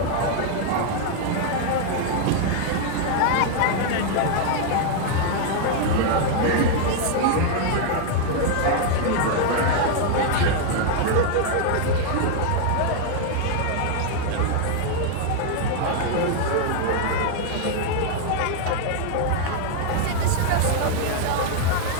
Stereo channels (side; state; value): both; different; correlation 0.00